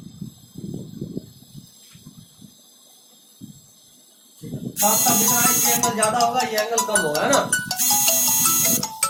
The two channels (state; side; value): identical; both; correlation 1.00